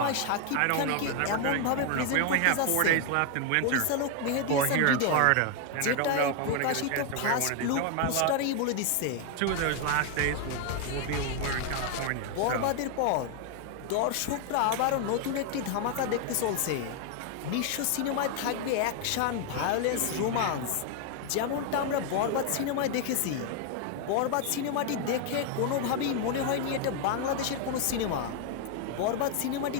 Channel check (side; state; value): both; different; correlation 0.00